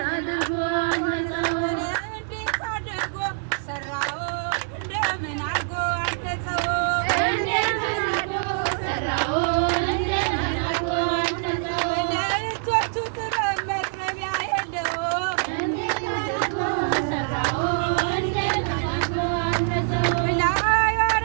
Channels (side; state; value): left; silent; 62 dB below the other